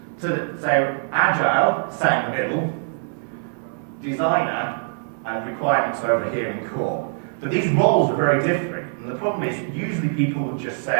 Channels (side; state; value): left; silent; 60 dB below the other